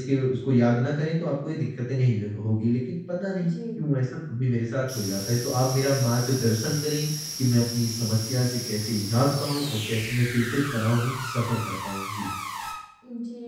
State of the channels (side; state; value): both; identical; correlation 1.00